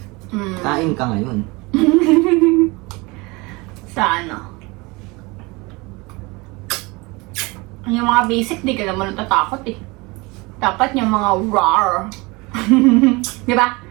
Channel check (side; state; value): left; quieter; 25.2 dB